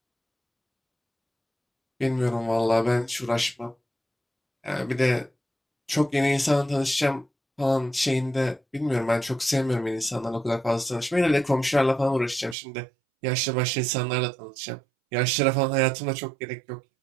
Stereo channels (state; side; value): drops out; left; at 12.6 s